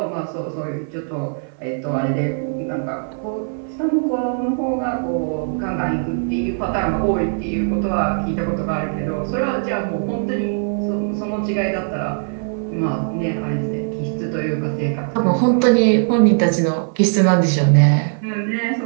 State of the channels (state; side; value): silent; left; 58 dB below the other